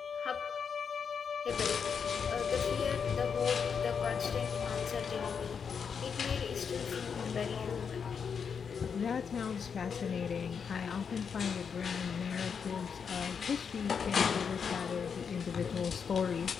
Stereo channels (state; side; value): quieter; right; 6.5 dB